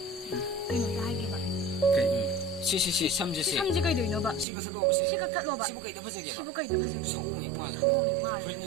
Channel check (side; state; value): left; drops out; at 4.5 s